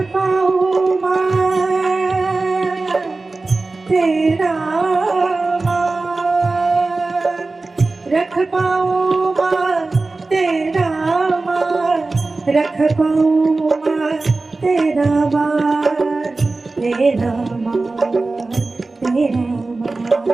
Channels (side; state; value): left; quieter; 3.5 dB